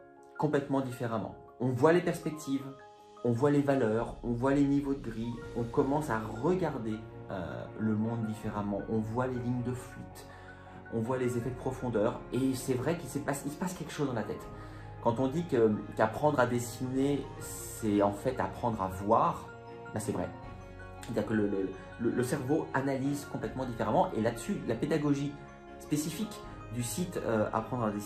complètement différemment. On voit les perspectives, on voit les valeurs, on voit les niveaux de gris, on commence à regarder le monde différemment, on voit les lignes de fuite, on voit les effets de profondeur et c'est vrai qu'il se passe quelque chose dans la tête. Quand on dit qu'apprendre à dessiner, c'est en fait apprendre à voir, ben c'est vrai. C'est-à-dire que le cerveau analyse complètement différemment et là-dessus, la pédagogie spécifique du site Apprendre à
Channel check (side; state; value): both; identical; correlation 1.00